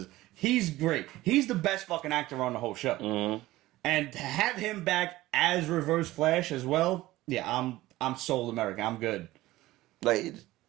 He's great. He's the best fucking actor on the whole show. Mm-hmm. And to have him back as Reverse Flash as well, yeah, I'm sold America. I'm good. Like,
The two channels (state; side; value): quieter; left; 17.2 dB